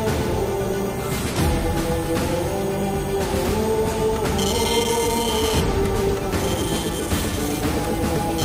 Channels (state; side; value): identical; both; correlation 1.00